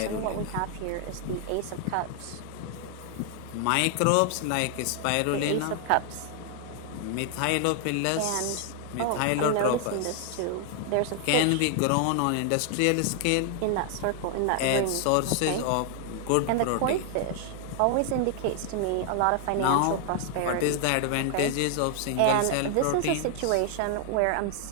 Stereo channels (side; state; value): both; different; correlation 0.00